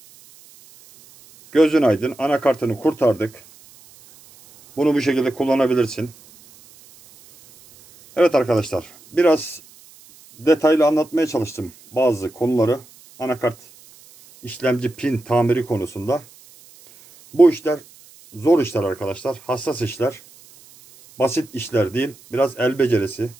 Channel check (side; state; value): right; noise; hiss, 25 dB below the sound